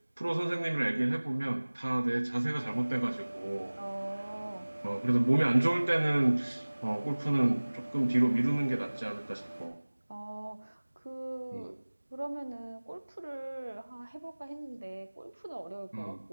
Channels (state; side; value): inverted; both; correlation -1.00